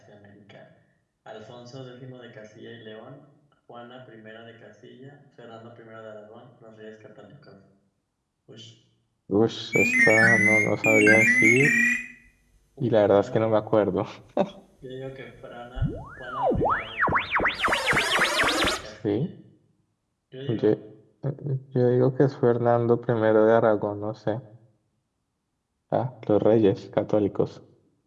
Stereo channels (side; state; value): both; identical; correlation 1.00